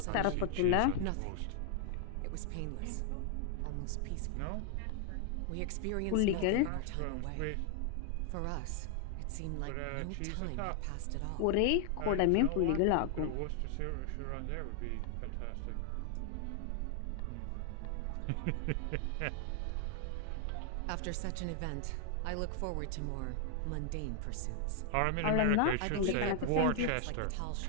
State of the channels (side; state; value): both; different; correlation 0.00